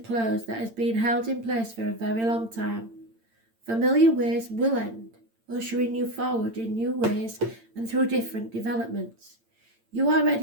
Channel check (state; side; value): late; left; 8.8 ms